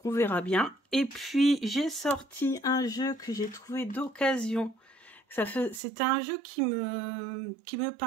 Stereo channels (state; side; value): drops out; left; at 5.8 s